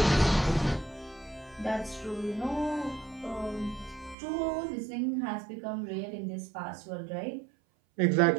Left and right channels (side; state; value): left; drops out; at 4.2 s